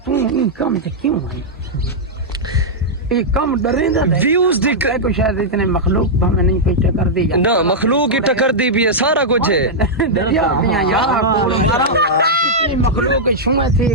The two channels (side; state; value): both; normal; correlation -0.07